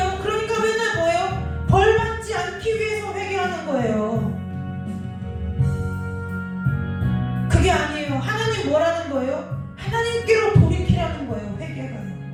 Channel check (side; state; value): both; identical; correlation 1.00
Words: 그러니까 맨날 뭐예요? 벌 받지 않기 위해서 회개하는 거예요. 그게 아니에요. 하나님 뭐라는 거예요? 하나님께로 돌이키라는 거예요. 회개가요.